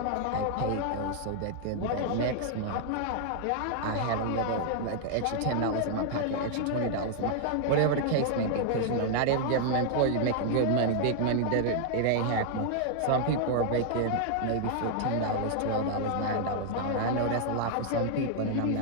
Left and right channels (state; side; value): different; both; correlation 0.00